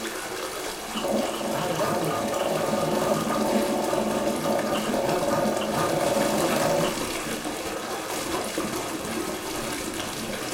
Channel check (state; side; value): identical; both; correlation 1.00